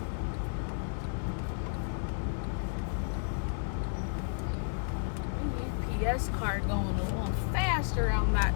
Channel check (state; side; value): silent; right; digital silence